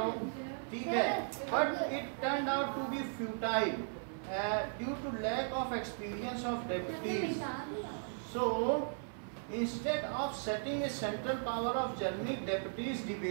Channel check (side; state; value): left; silent; 53 dB below the other